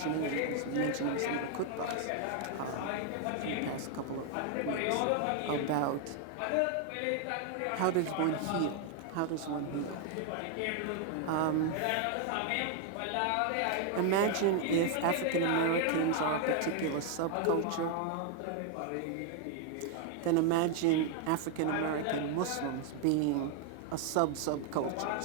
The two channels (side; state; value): both; different; correlation 0.00